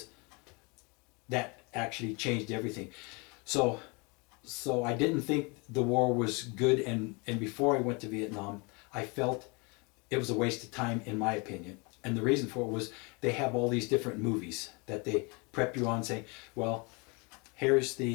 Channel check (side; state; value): right; quieter; 30.0 dB